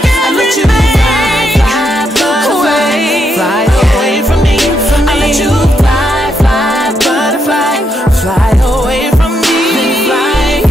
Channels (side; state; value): both; normal; correlation 0.80